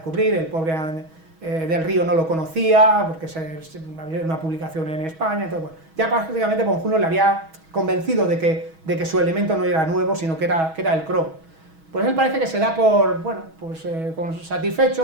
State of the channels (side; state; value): left; late; 6.2 ms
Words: el pobre del Río no lo conocía, porque había una publicación en España, entonces bueno, ya prácticamente von Humboldt le había convencido de que su elemento no era nuevo, sino que era el cromo. Pues él parece que se da con